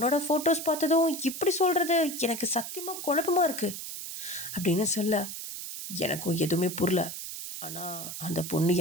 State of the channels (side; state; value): right; noise; hiss, 8 dB below the sound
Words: ஃபோட்டோஸ் பார்த்ததும் இப்படி சொல்கிறது எனக்கு சத்தியமாக குழப்பமாக இருக்குது அப்படின்னு சொல்ல, எனக்கும் எதுவுமே புரியல. ஆனால் அந்த பொண்ணு